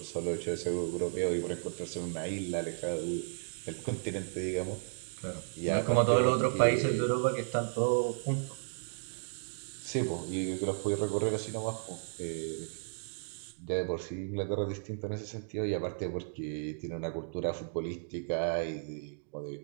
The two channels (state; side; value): silent; left; digital silence